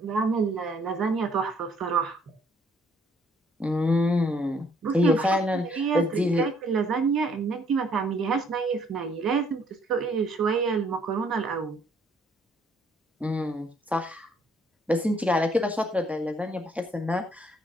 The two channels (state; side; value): normal; both; correlation 0.65